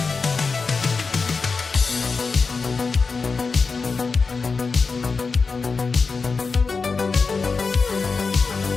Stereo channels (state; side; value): quieter; right; 4.6 dB